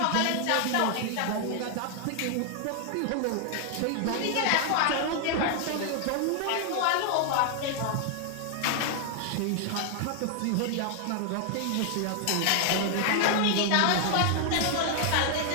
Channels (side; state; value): both; different; correlation 0.00